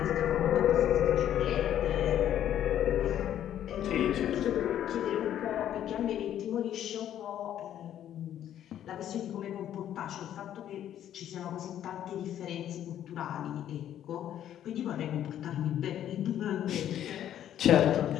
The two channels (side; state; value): right; quieter; 10.9 dB